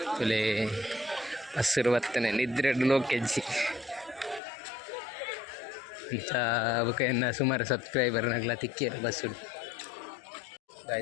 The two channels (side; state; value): right; drops out; at 4.4 s